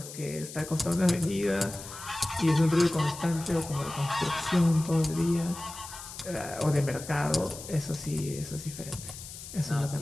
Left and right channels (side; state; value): left; noise; hiss, 12 dB below the sound